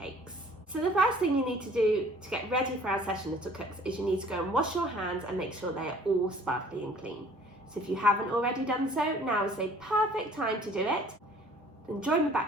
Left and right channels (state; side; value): normal; both; correlation 0.54